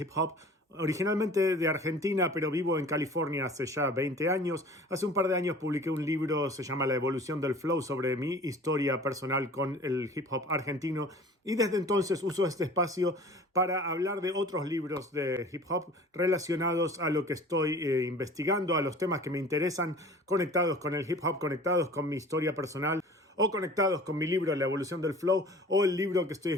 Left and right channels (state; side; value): normal; both; correlation 0.44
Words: hop, originalmente de Argentina, pero vivo en California hace ya 20 años. Hace un par de años publiqué un libro, se llama La evolución del flow, sobre mi historia personal con el hip hop argentino, y desde entonces uso este espacio para hablar de otros libros de hip hop relacionados a lo que estoy investigando, a los temas que me interesan, conectados con el hip hop, conectados con mi historia personal, o conectados con mi libro La evolución del flow, o el libro que estoy